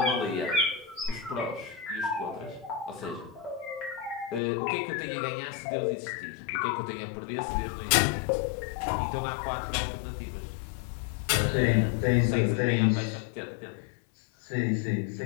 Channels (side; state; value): right; drops out; at 4.4 s